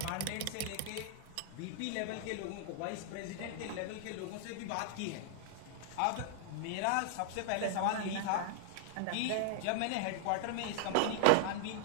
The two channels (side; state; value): both; different; correlation 0.00